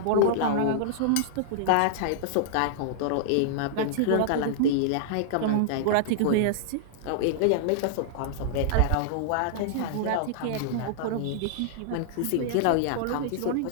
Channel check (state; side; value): different; both; correlation -0.01